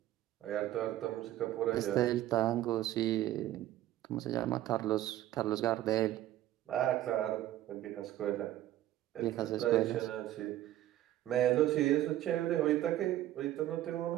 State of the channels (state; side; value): quieter; left; 13.7 dB